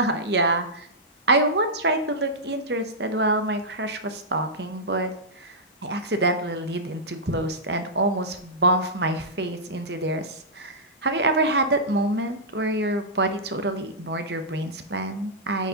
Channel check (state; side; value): normal; both; correlation -0.12